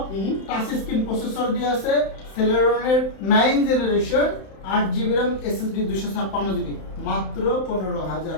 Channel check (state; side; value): late; right; 31 ms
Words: touch screen processor দিয়ে আছে সেলেরনের 9 generation 8GB RAM SSD 256GB মাত্র